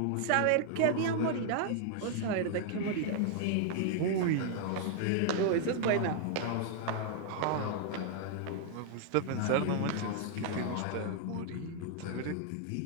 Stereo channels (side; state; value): both; different; correlation -0.01